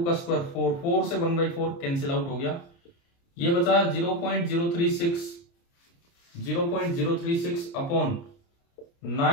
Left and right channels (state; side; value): late; right; 29 ms